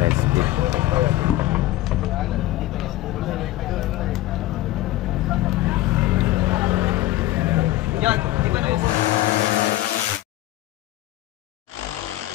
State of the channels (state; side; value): quieter; right; 16.4 dB